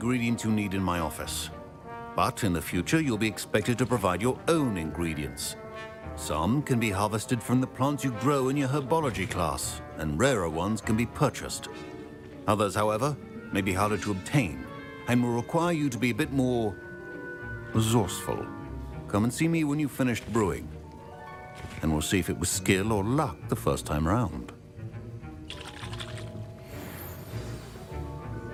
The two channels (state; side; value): identical; both; correlation 1.00